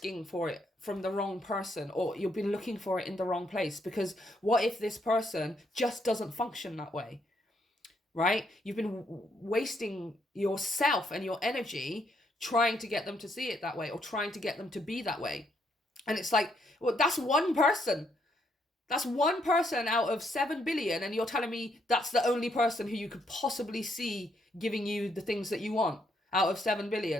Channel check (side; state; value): both; normal; correlation 0.74